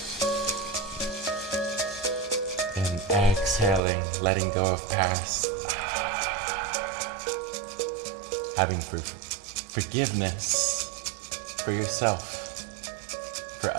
And exhaling, letting go of past. Having forgiveness for yourself, for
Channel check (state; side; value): drops out; left; at 3.8 s